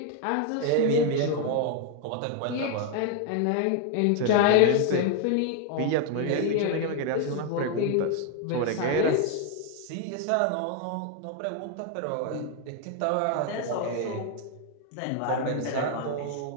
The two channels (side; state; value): both; different; correlation 0.01